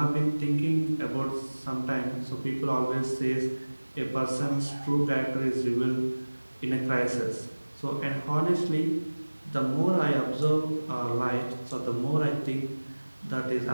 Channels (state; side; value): inverted; both; correlation -1.00